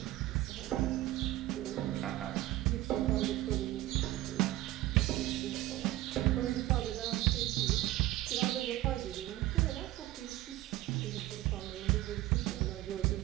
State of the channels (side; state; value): left; quieter; 16.2 dB